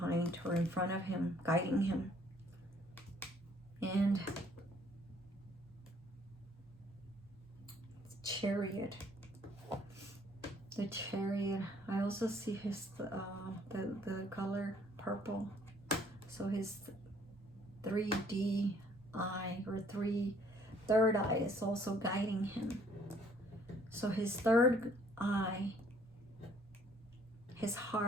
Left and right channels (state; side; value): normal; both; correlation 0.61